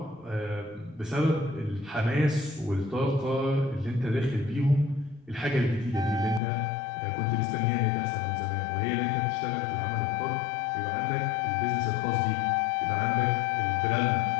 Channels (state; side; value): drops out; right; at 6.4 s